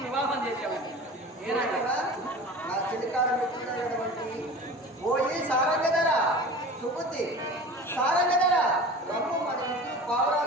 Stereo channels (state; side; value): normal; both; correlation 0.37